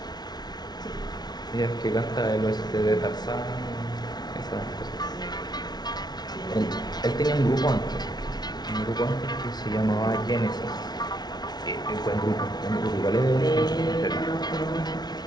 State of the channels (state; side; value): late; right; 0.19 ms